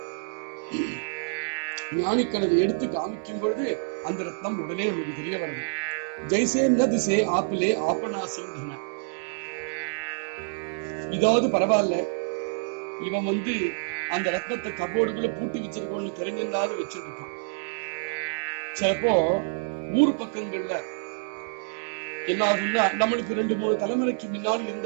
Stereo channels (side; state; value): left; silent; digital silence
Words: ஞானிகள் அதை எடுத்து காமிக்கும் பொழுது அந்த ரத்னம் உடனே நமக்கு தெரிய வருது. ஜெய்சே ந திசே ஆப்பிலே ஆப்பனாசிந்தன. இதாவது பரவாயில்ல, இவன் அந்த ரத்னத்தை கபோர்டுக்குள்ள பூட்டி வச்சிருக்கோன்னு தெரிஞ்சிருந்தாலும் வச்சிருக்கான். சிலப்போ ஊர் பக்கங்கள்ல என்ன ஆகும்னா, நம்மளுக்கு 2-3 தலைமுறைக்கு முன்னாடி